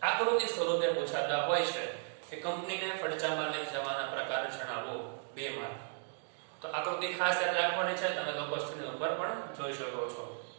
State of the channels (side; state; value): left; silent; 54 dB below the other